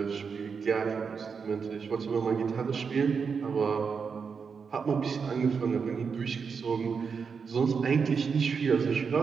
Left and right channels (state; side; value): quieter; left; 5.8 dB